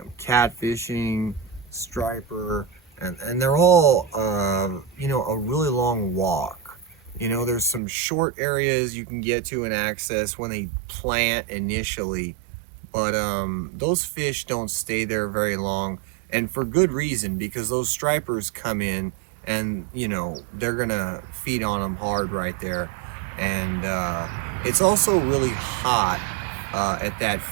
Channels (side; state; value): left; drops out; at 7.8 s